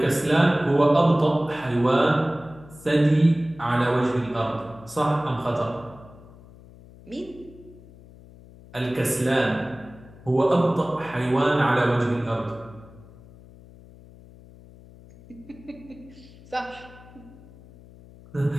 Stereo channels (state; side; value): noise; left; hum, 21 dB below the sound